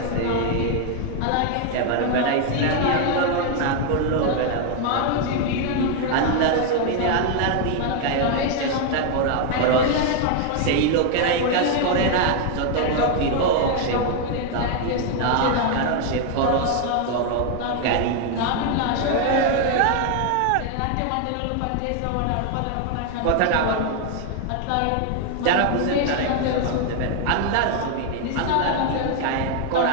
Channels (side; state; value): both; different; correlation 0.00